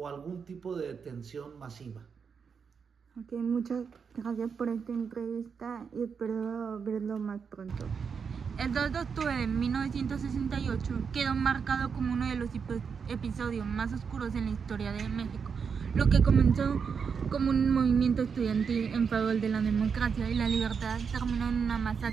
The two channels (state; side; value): quieter; left; 6.1 dB